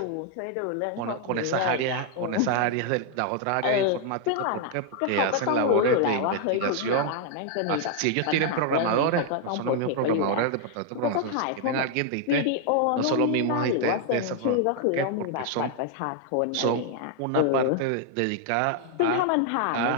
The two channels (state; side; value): different; both; correlation 0.00